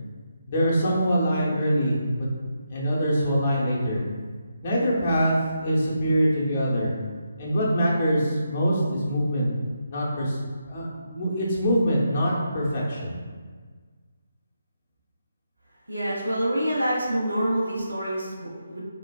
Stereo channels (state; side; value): inverted; both; correlation -0.82